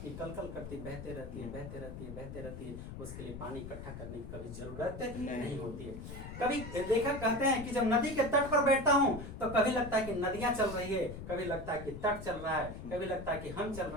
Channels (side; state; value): left; noise; rumble, 10 dB below the sound